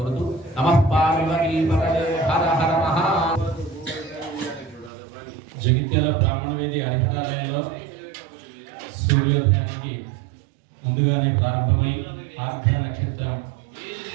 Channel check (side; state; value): left; drops out; at 4.9 s